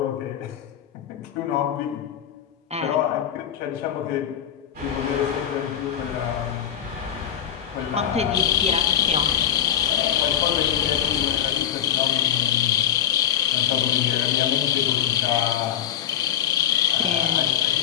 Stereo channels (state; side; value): quieter; right; 10.2 dB